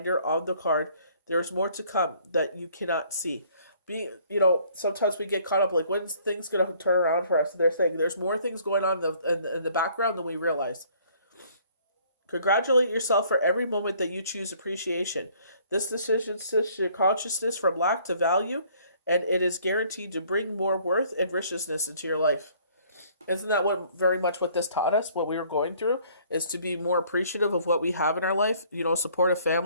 her on the card, there is more to come that you cannot see. Sometimes we get caught up, like, when's things going to turn around for us? They're saying there's more things going on in the background than we realize. Congratulate yourself for every moment that you choose appreciation. This decision shifts your consciousness from lack to value, and it is guaranteed to bring more worth and richness into your life. Isn't that what very much what this taught us, what we were going through, is to be more appreciative of what we have in our life, support a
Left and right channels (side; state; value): both; inverted; correlation -0.59